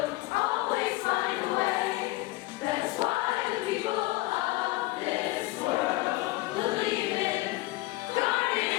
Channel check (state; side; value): quieter; right; 19.6 dB